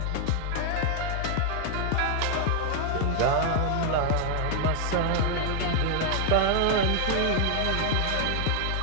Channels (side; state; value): both; different; correlation 0.00